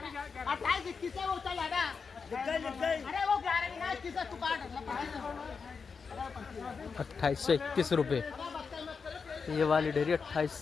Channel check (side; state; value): right; quieter; 5.4 dB